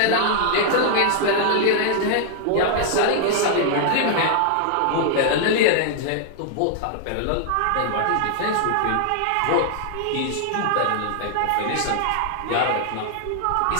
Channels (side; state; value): both; different; correlation -0.01